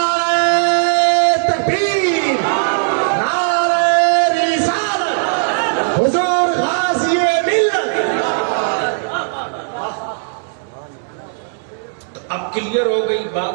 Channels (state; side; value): silent; left; digital silence